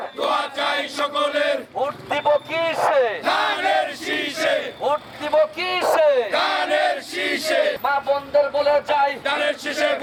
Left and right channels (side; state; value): both; identical; correlation 1.00